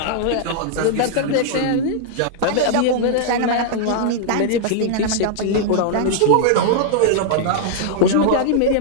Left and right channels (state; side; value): different; both; correlation -0.01